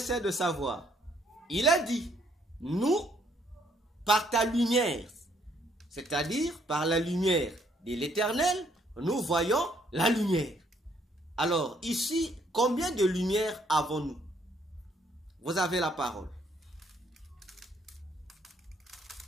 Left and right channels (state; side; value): normal; both; correlation 0.68